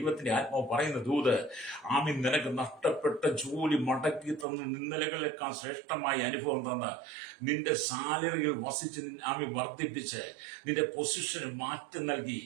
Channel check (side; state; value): left; drops out; at 4.5 s